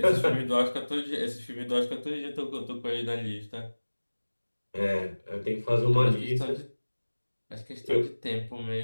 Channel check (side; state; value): both; inverted; correlation -1.00